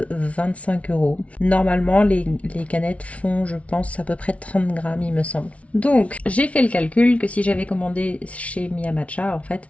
25 euros. Normalement les canettes font, je pense, à peu près 30 grammes il me semble. Donc j'ai fait le calcul que si j'avais commandé chez Mia Matcha, en fait,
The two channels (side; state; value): right; late; 0.064 ms